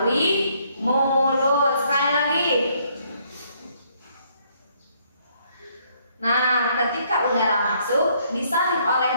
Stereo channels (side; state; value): both; inverted; correlation -0.68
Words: mulut. Sekali lagi. Nah, ketika udara masuk disalin